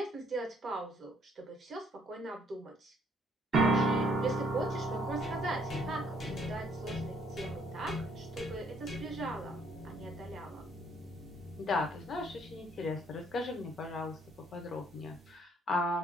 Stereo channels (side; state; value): both; normal; correlation 0.65